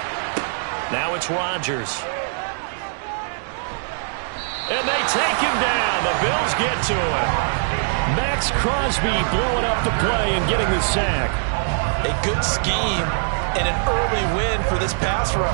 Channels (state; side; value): silent; left; digital silence